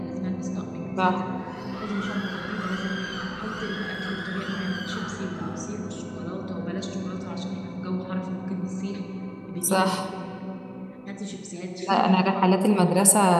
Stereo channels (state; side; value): identical; both; correlation 1.00